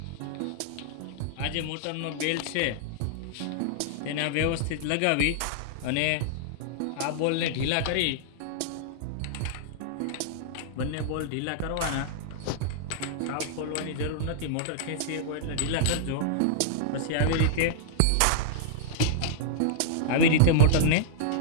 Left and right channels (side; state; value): both; different; correlation -0.02